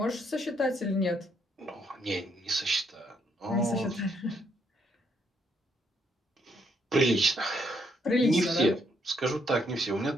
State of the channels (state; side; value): normal; both; correlation 0.73